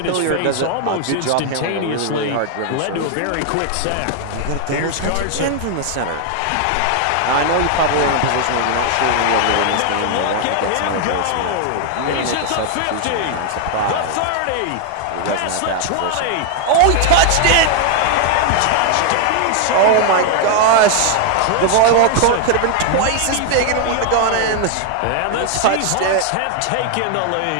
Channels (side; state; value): both; different; correlation 0.00